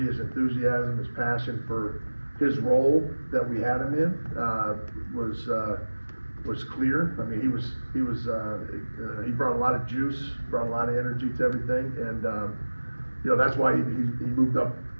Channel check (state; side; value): inverted; both; correlation -1.00